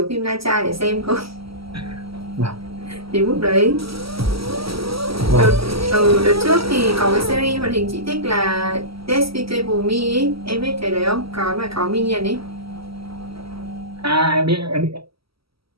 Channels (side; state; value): left; late; 0.75 ms